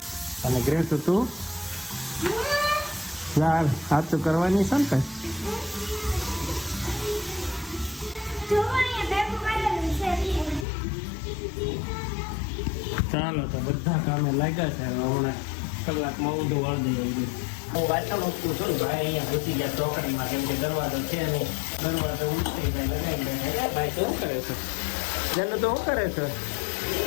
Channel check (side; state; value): right; drops out; at 10.7 s